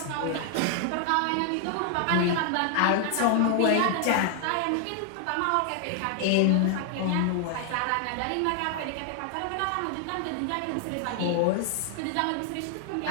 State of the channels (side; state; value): both; different; correlation 0.00